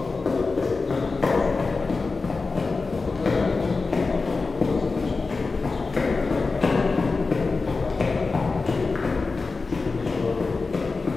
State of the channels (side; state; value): right; quieter; 4.0 dB